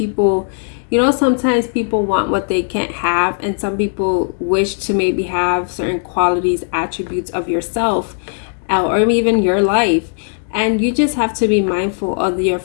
sometimes people want what they can't have, and some people wish to maybe have certain qualities, attributes of yourself, or even your life. And you just have to be mindful of your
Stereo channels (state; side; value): silent; right; 67 dB below the other